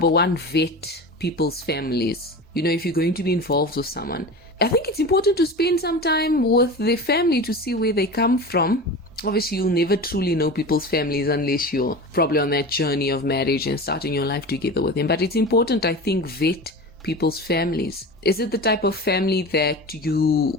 one, vet people's families. If you're going to be involved with someone, I think it's important to spend some time with their family to see where they come from. Obviously, you'll never truly know people's families unless you're probably on that journey of marriage and starting your life together with them. But it's important, I think, vet people's families. Is it the type of family that you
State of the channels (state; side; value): normal; both; correlation 0.31